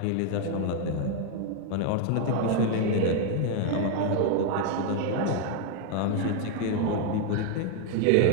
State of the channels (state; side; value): different; both; correlation 0.01